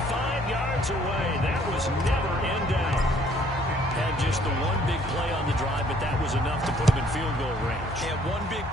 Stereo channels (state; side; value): normal; both; correlation 0.61